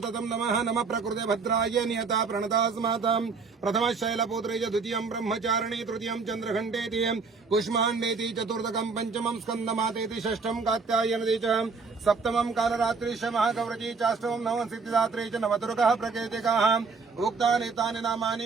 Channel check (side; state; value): left; quieter; 4.7 dB